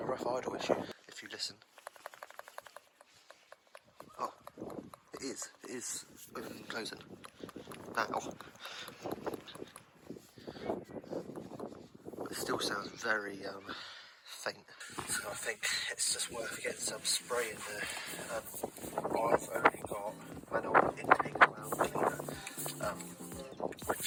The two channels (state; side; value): identical; both; correlation 1.00